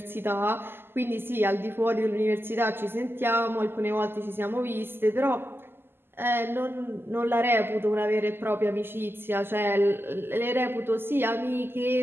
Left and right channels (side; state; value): left; late; 0.11 ms